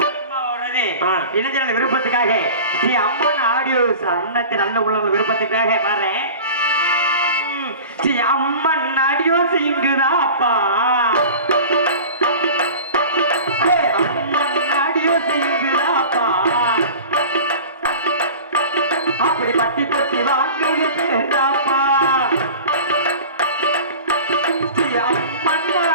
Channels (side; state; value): both; inverted; correlation -0.37